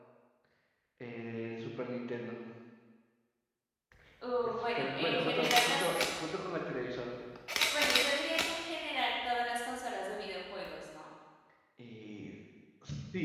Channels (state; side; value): identical; both; correlation 1.00